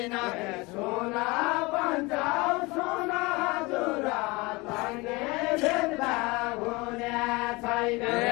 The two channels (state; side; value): quieter; right; 24.3 dB